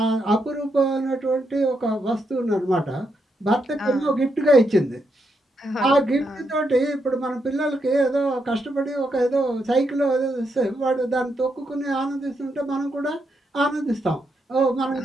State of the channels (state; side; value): normal; both; correlation 0.81